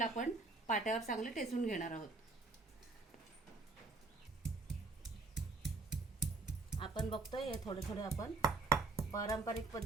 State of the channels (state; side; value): quieter; left; 3.7 dB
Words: आपण पाट्यावर चांगले टेचून घेणार आहोत. आपण बघतोय हे थोडे थोडे आपण पारंपरिक